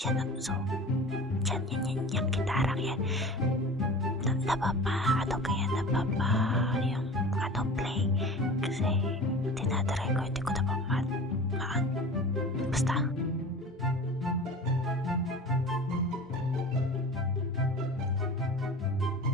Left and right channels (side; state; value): both; normal; correlation 0.38